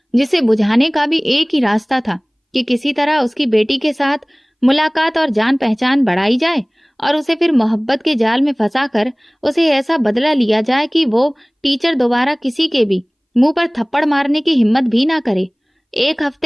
जिसे बुझाने का भी एक ही रास्ता था कि किसी तरह उसकी बेटी के साथ मुलाकात और जान पहचान बढ़ाई जाए और उसे फिर मोहब्बत के जाल में फंसाकर उसे ऐसा बदला लिया जाए कि वो टीचर दोबारा किसी के भी मुंह पर थप्पड़ मारने की हिम्मत भी ना करे। 1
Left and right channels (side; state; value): both; identical; correlation 1.00